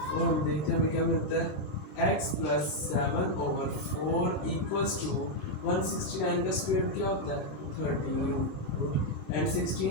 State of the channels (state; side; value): late; right; 26 ms